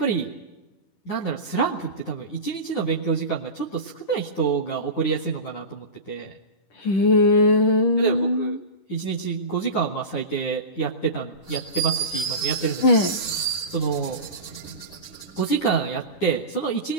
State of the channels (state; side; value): late; right; 10 ms